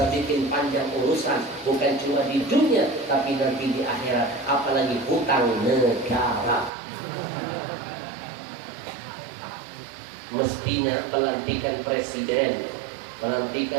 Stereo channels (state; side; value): drops out; left; at 6.7 s